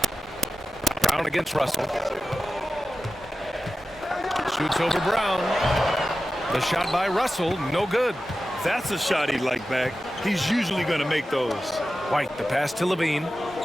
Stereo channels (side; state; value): both; normal; correlation 0.93